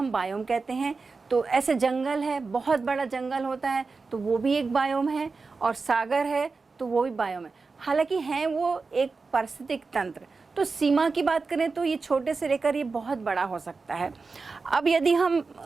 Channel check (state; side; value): quieter; left; 4.3 dB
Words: बायोम कहते हैं। तो ऐसे जंगल है, बहुत बड़ा जंगल होता है, तो वो भी एक बायोम है। और सागर है तो वो भी बायोम है। हालांकि हैं वो एक पारिस्थितिक तंत्र। तो सीमा की बात करें तो ये छोटे से लेकर ये बहुत बड़ा हो सकता है। अब यदि हम